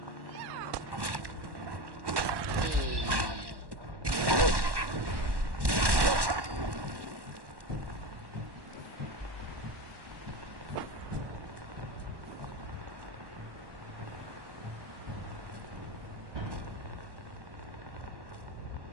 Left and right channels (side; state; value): left; late; 1.1 ms